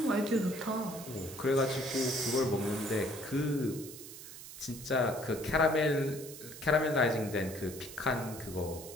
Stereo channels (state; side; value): noise; right; hiss, 13 dB below the sound